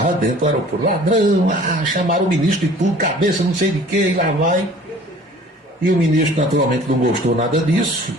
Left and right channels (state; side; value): normal; both; correlation 0.49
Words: dentro do aeroporto. Ladrão, chamaram o ministro de tudo, cabeça não sei de quê, e lá vai. E o ministro naturalmente não gostou nada disso,